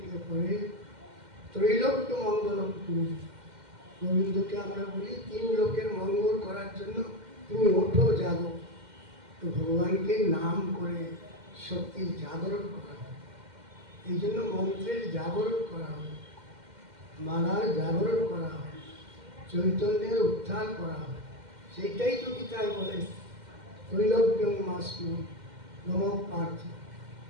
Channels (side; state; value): left; late; 2.1 ms